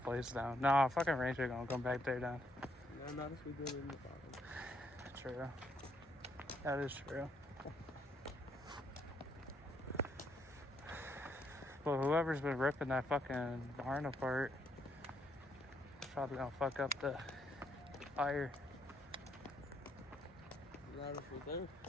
down. No, fucking ranger gonna come back there down. No, not if we do it in the barn. True. That is true. But whoever's been ripping that fucking barn apart is probably gonna fuck up the fire. Not if we do.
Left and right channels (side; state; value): both; normal; correlation 0.73